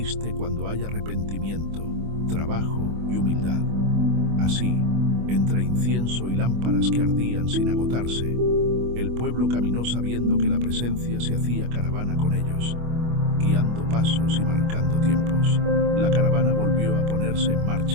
cuando hay arrepentimiento, trabajo y humildad. Así, entre incienso y lámparas que ardían sin agotarse, el pueblo caminó sabiendo que la presencia se hacía caravana con ellos, guiando pasos y marcando tiempos. La caravana volvió a ponerse en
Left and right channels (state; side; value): late; left; 25 ms